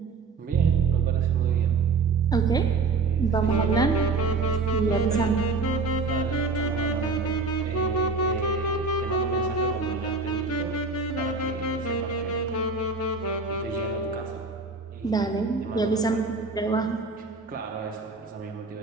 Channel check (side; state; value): left; quieter; 4.2 dB